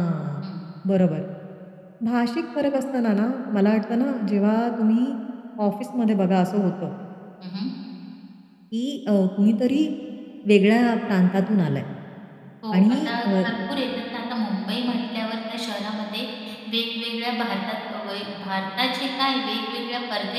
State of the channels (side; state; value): both; identical; correlation 1.00